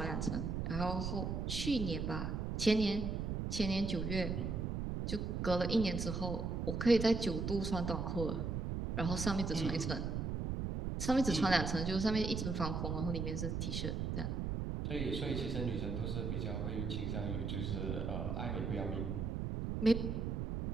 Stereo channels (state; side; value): noise; right; rumble, 1 dB below the sound